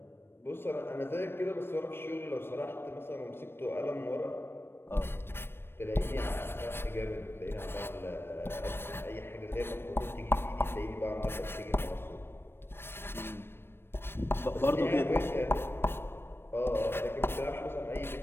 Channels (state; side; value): late; right; 0.11 ms